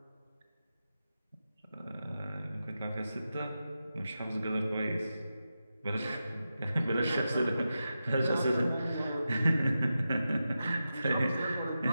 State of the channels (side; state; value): both; inverted; correlation -0.91